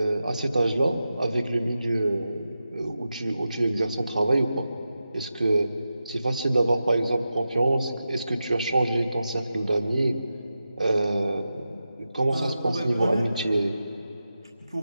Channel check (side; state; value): both; inverted; correlation -0.90